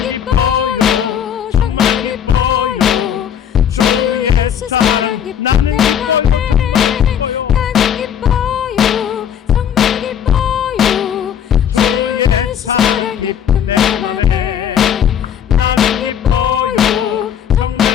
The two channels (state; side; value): quieter; right; 8.9 dB